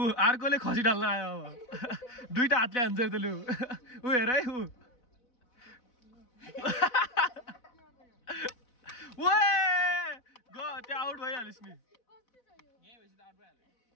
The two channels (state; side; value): late; right; 4.0 ms